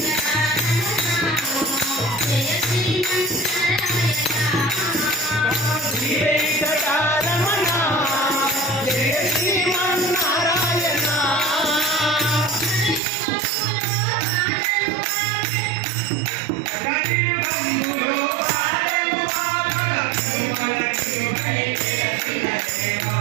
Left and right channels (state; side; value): drops out; left; at 13.0 s